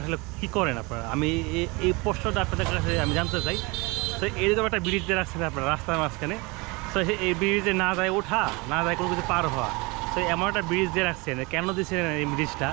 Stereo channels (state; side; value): quieter; left; 26.3 dB